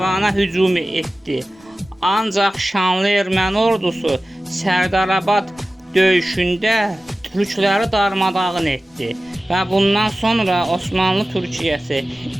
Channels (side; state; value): both; normal; correlation 0.96